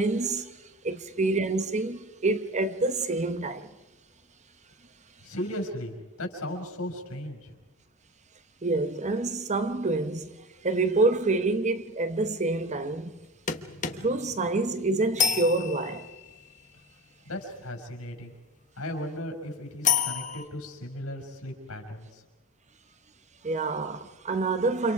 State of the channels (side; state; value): both; normal; correlation 0.30